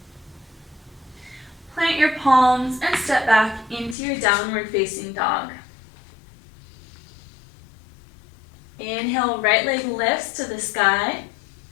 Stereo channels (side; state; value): right; drops out; at 4.0 s